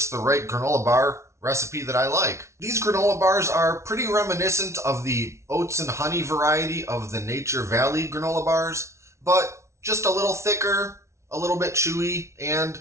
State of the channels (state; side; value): late; left; 0.13 ms